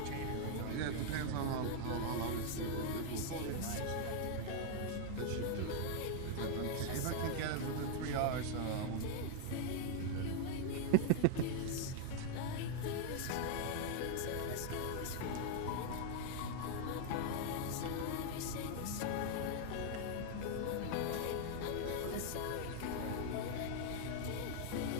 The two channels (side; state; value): both; different; correlation 0.00